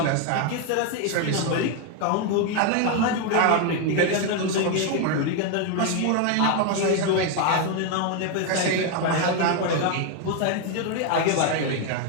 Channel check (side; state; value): both; different; correlation 0.01